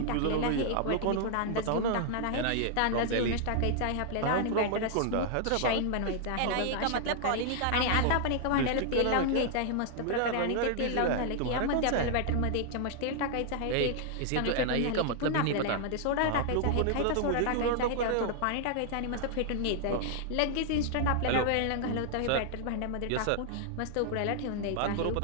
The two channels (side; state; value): both; different; correlation 0.00